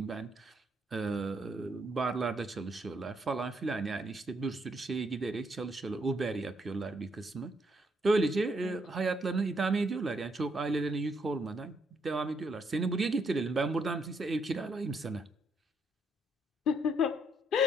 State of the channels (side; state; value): both; normal; correlation 0.73